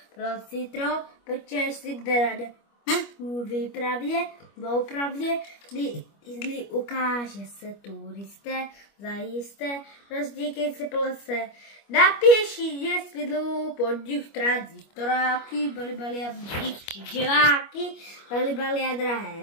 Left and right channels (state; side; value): late; right; 25 ms